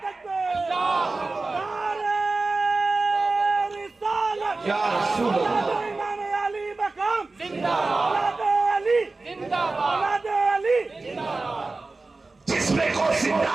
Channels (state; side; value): quieter; left; 3.5 dB